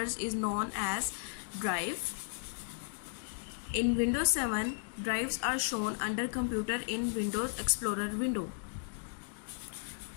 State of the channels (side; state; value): right; silent; digital silence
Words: is known as drive. In Windows 7, drives are shown under Computer in Windows Explorer window.